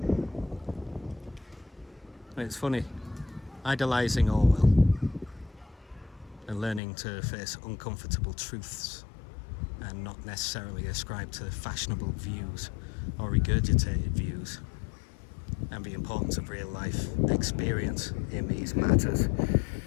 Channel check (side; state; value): right; drops out; at 6.8 s